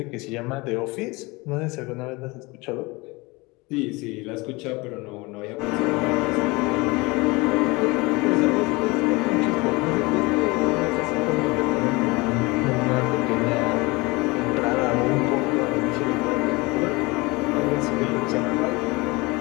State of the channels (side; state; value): right; quieter; 24.4 dB